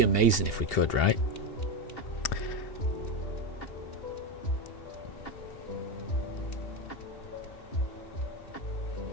amazing if we could, right?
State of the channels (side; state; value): right; late; 2.8 ms